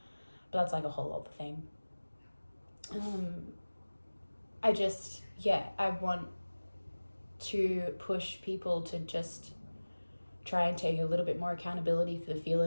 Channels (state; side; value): inverted; both; correlation -1.00